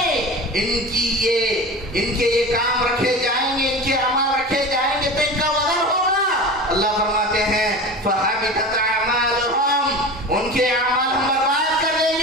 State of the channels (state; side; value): normal; both; correlation 0.32